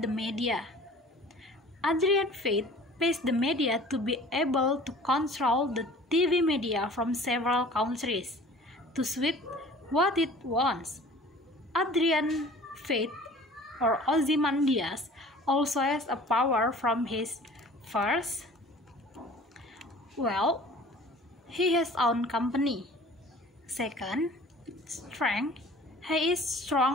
the media. Adrian Fate pays the media to be able to control the TV media from several countries to suit what it wants. Adrian Fate or Ozymandias also has a power from his first, he has own company. Second, strength. He is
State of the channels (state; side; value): normal; both; correlation 0.46